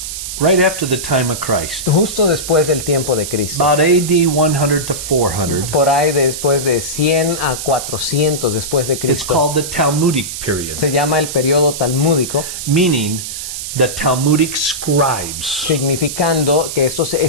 right after the time of Christ, justo después del tiempo de Cristo, about AD 100 to 400, por ahí después de 100 a 400 después de it's Cristo, called the Talmudic period, se llama el periodo talmúdico, meaning the Talmudic scribes. significando que estos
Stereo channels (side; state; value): right; noise; hiss, 7 dB below the sound